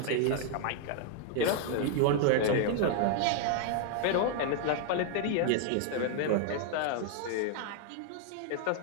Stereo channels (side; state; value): both; different; correlation 0.00